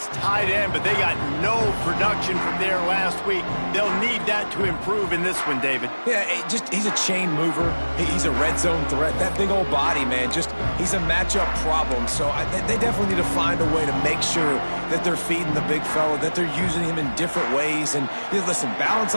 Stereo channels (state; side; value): inverted; both; correlation -1.00